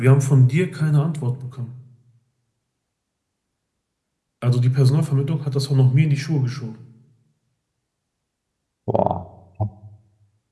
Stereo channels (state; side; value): identical; both; correlation 1.00